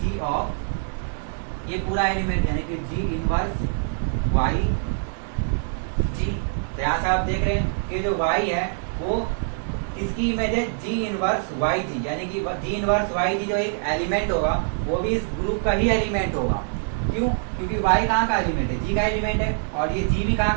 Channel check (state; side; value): silent; left; 62 dB below the other